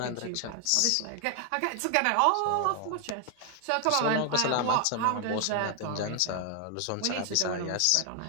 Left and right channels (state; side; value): different; both; correlation 0.00